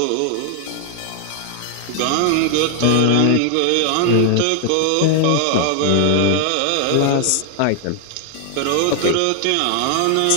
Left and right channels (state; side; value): different; both; correlation 0.00